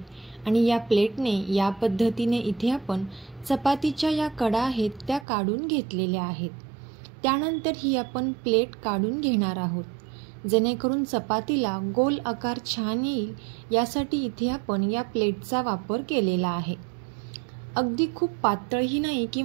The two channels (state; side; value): drops out; left; at 5.2 s